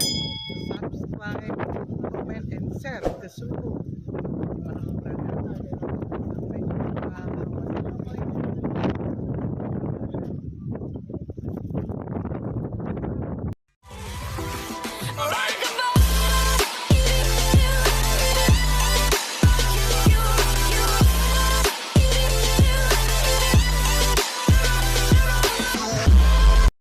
subscribe, comment, and share ke seluruh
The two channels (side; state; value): both; identical; correlation 1.00